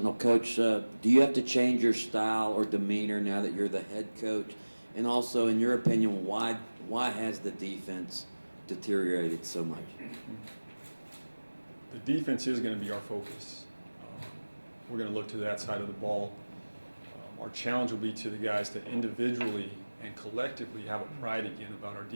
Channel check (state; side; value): inverted; both; correlation -1.00